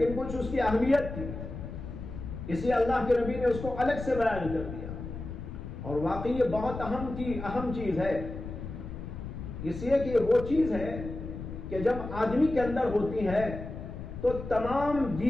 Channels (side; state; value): left; noise; rumble, 9 dB below the sound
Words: کچھ اس کی اہمیت تھی، اس لیے اللہ کے نبی نے اس کو الگ سے بیان کر دیا، اور واقعی یہ بہت اہم چیز ہے، اس لیے کہ وہ چیز ہے کہ جب آدمی کے اندر ہوتی ہے تو تمام